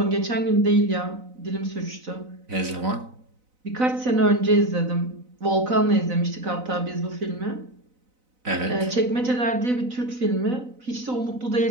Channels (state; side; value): late; left; 4.0 ms